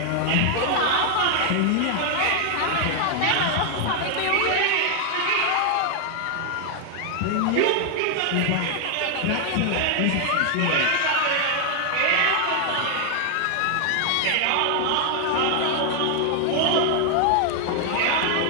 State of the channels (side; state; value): both; different; correlation 0.00